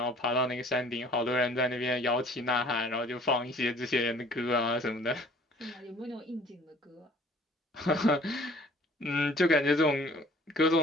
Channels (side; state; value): both; normal; correlation 0.53